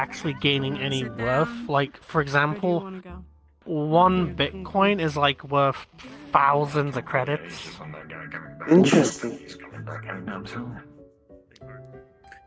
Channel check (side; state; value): both; identical; correlation 1.00